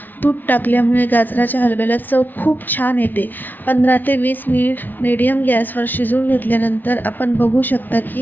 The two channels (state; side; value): late; right; 0.090 ms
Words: तूप टाकल्यामुळे गाजराच्या हलव्याला चव खूप छान येते. 15 ते 20 मिनिट मीडियम गॅसवर शिजवून घेतल्यानंतर आपण बघू शकता